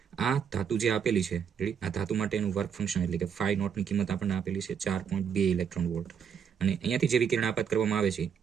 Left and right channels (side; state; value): left; quieter; 7.5 dB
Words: આ ધાતુ જે આપેલી છે, આ ધાતુ માટેનું વર્ક ફંક્શન એટલે કે ફાઈ નોટની કિંમત આપણને આપેલી છે 4.2 ઇલેક્ટ્રોન વોલ્ટ. અને અહીંયાથી જે વિકિરણ આપાત કરવામાં આવે છે